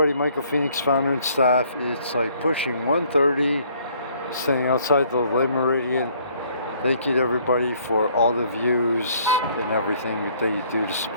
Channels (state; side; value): inverted; both; correlation -0.62